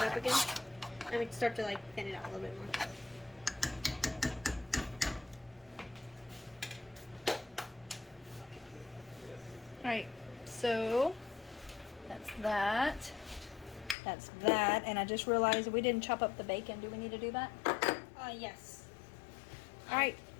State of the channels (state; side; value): drops out; right; at 14.0 s